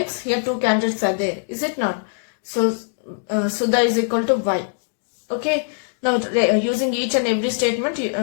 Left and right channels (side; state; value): right; silent; digital silence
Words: Here two candidates are there. Is it not? So, Sudha is equal to Y. Okay. Now, using each and every statement,